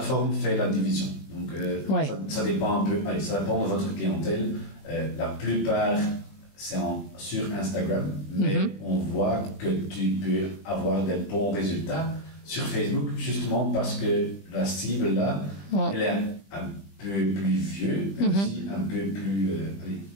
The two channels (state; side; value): late; right; 20 ms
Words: fait la division. Donc, ça dépend un peu. Allez, ça dépend de votre clientèle. La plupart, c'est sur Instagram, mais on voit que tu peux avoir des bons résultats sur Facebook, justement parce que la cible là, elle est un peu plus vieux, mais aussi un peu plus...